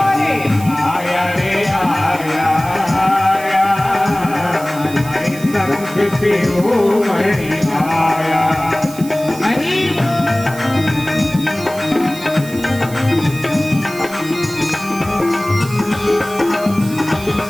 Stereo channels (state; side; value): noise; right; hiss, 16 dB below the sound